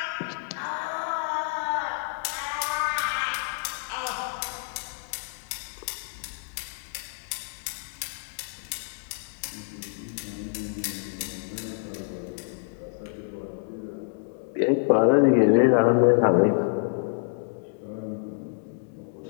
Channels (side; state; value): right; silent; digital silence